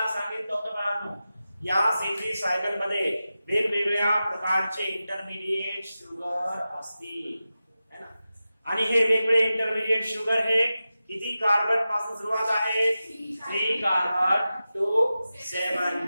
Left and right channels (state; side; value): inverted; both; correlation -0.93